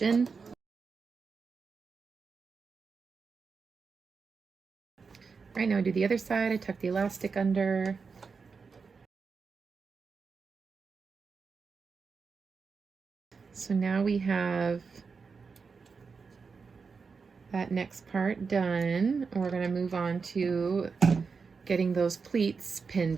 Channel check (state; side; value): quieter; left; 5.1 dB